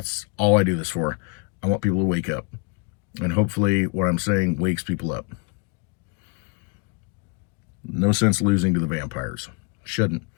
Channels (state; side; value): quieter; right; 33.9 dB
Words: all I do this for. I want people to wake up. And hopefully what I'm saying wakes people up. No sense losing to the vampires. Shouldn't,